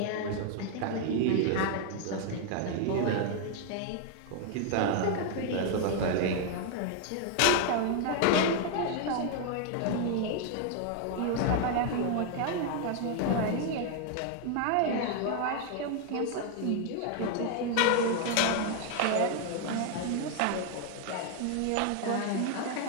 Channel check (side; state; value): both; different; correlation 0.00